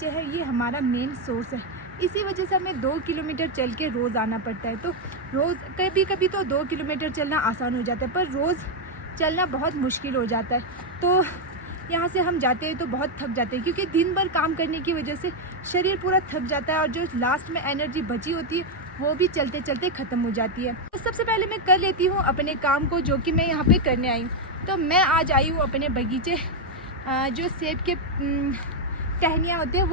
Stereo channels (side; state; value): both; normal; correlation 0.03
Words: है ये हमारा मेन सोर्स है, इसी वजह से हमें 2 किलोमीटर चल के रोज़ आना पड़ता है। तो रोज़ कभी कभी तो 2 किलोमीटर चलना आसान हो जाता है, पर रोज़ चलना बहुत मुश्किल हो जाता है। तो यहाँ से हम जाते हैं तो बहुत थक जाते हैं, क्योंकि दिन भर काम करने की वजह से शरीर पूरा थक जाता है, और जो लास्ट में एनर्जी बची होती है वो भी चलते चलते ख़त्म हो जाती है। तो सबसे पहले मैं कर लेती हूँ अपने काम को, जो कि मैं यहाँ पे करने आई हूँ। तो मैं आज आई हूँ अपने बगीचे जो सेब के टहनियाँ होते हैं